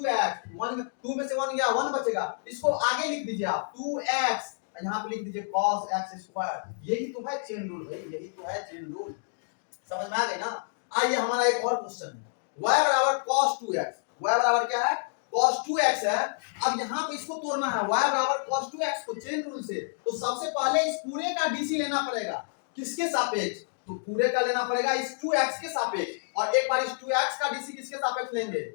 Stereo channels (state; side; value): silent; right; digital silence